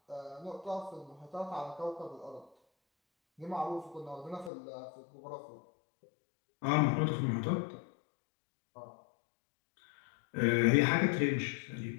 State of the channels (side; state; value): right; drops out; at 4.5 s